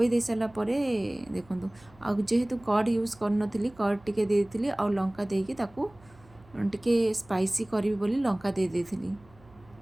ଦେଇସାରିଲା ପରେ ଦେଖନ୍ତୁ, ଆଉ ଯେହେତୁ କର୍ଡ଼ ୟୁଜ୍ କରିନଥିଲି, କର୍ଡ଼ ଟିକେ ଦେଇଥିଲି ଆଉ ଲଙ୍କା ଦେଇକି ତାକୁ ଟିକେ ସ୍ପାଇସି କରିବି ବୋଲି ଲଙ୍କା ଦେଇଥିଲି।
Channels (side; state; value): right; noise; hum, 26 dB below the sound